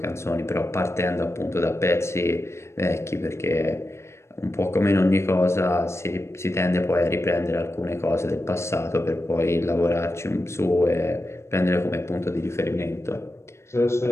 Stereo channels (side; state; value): right; late; 0.13 ms